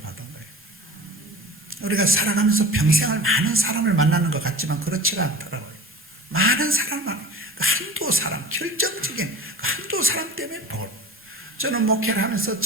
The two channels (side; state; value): both; normal; correlation 0.37